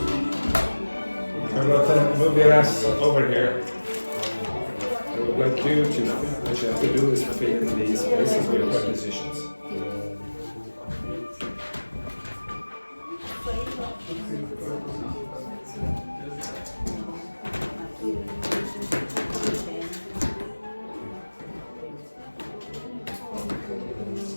How about that? Move your ass over here. I would like you to know what you have to do is fill in these places with prepositions.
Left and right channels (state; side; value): inverted; both; correlation -1.00